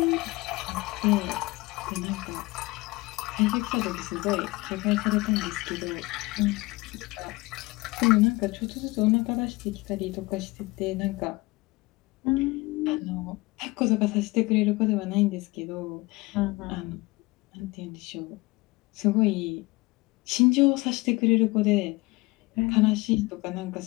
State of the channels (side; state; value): right; quieter; 22.8 dB